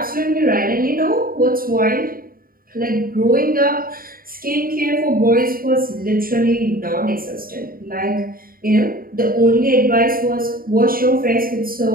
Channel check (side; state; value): left; late; 0.42 ms